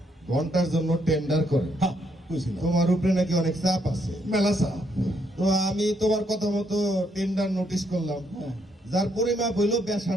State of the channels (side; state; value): both; normal; correlation 0.74